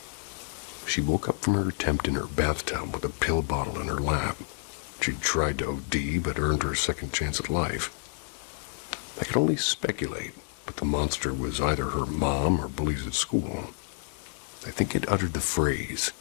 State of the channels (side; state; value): right; silent; digital silence